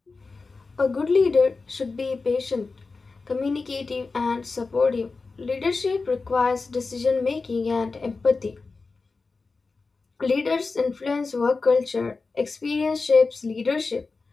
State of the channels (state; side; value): quieter; right; 4.1 dB